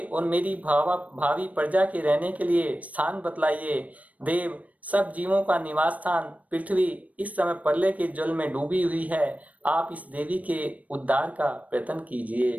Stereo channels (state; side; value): late; left; 0.069 ms